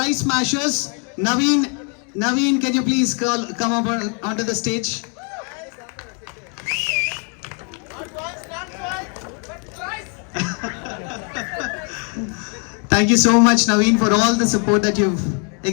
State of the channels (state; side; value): quieter; right; 38.9 dB